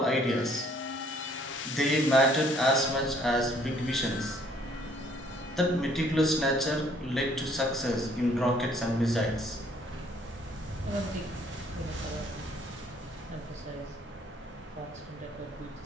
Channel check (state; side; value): normal; both; correlation 0.62